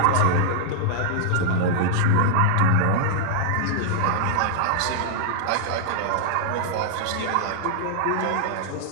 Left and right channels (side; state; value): both; different; correlation -0.01